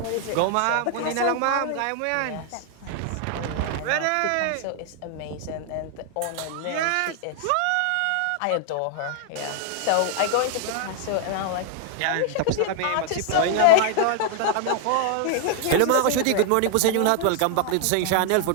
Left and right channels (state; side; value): different; both; correlation 0.00